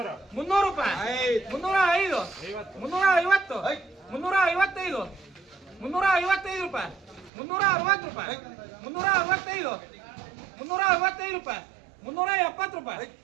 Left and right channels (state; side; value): drops out; left; at 7.3 s